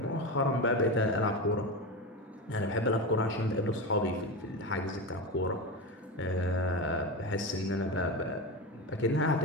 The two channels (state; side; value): normal; both; correlation 0.20